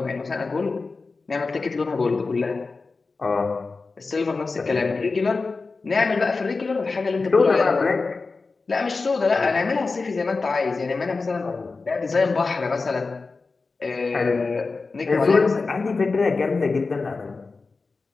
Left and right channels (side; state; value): right; quieter; 4.0 dB